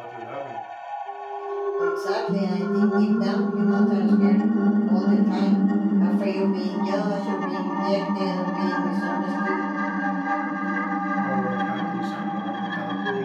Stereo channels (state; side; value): identical; both; correlation 1.00